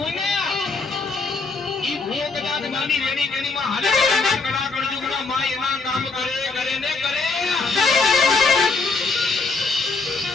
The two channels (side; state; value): right; quieter; 4.1 dB